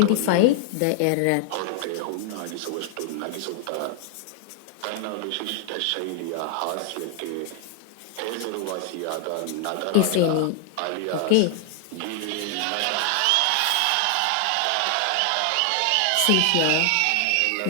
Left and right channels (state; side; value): different; both; correlation 0.00